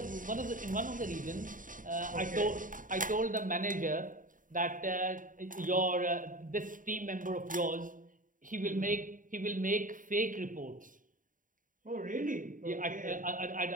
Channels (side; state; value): left; late; 0.39 ms